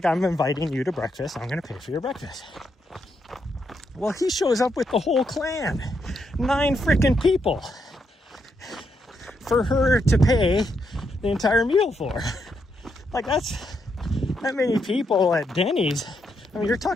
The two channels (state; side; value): normal; both; correlation 0.79